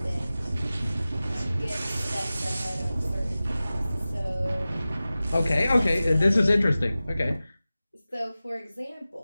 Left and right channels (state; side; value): inverted; both; correlation -0.96